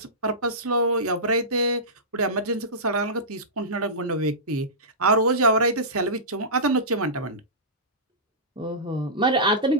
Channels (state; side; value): normal; both; correlation -0.20